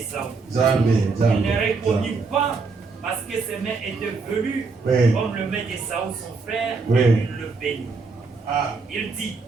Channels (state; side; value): quieter; left; 4.2 dB